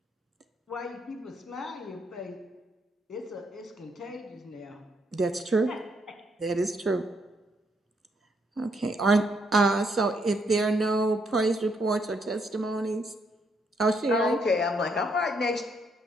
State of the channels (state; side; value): normal; both; correlation 0.74